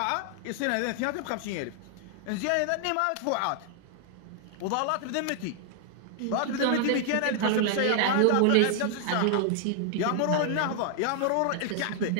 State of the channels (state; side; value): different; both; correlation 0.00